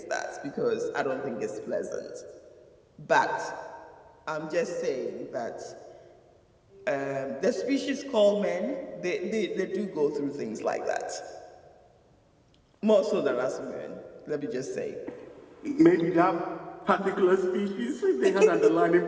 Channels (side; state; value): both; identical; correlation 1.00